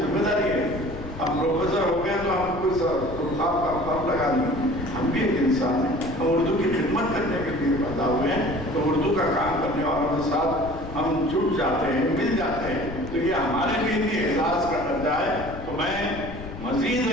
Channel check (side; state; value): left; noise; rumble, 12 dB below the sound